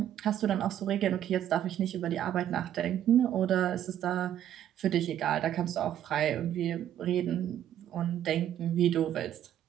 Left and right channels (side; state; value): left; quieter; 10.9 dB